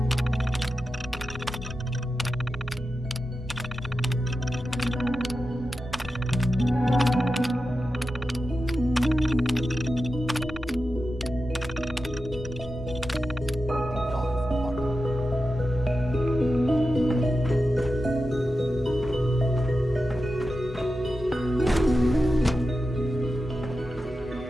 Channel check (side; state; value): both; normal; correlation 0.91